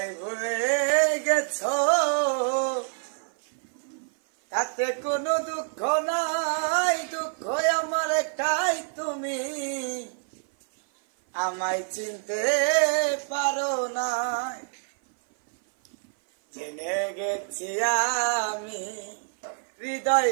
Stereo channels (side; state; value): left; silent; 57 dB below the other